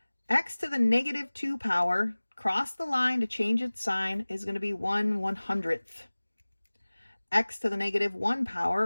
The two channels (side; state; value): both; inverted; correlation -1.00